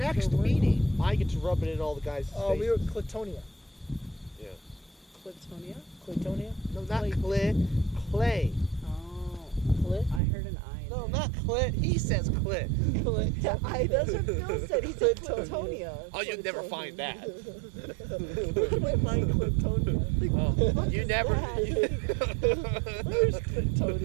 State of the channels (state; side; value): drops out; left; at 10.2 s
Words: So what- meeting, I get to rub it in all the guys' faces. We were Clatonia. Yeah. Clitonia? Clatonia? No, not Clay. Clay. Oh. Clit? I heard an I. in No, there. not clit. He says clit. That's what Phil said. He said Clitonia. Clitonia. Oh, you'd never find that. Where can I find Clatonia? Oh, you never. Where's